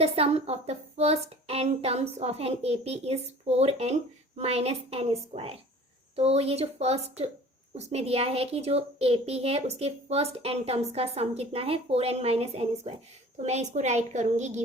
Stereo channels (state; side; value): normal; both; correlation 0.45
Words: the sum of the first n terms of an AP is 4n minus n square. तो ये जो फर्स्ट उसमें दिया है कि जो AP है उसके फर्स्ट n टर्म्स का सम कितना है, 4n माइनस n स्क्वायर। तो मैं इसको राइट करूँगी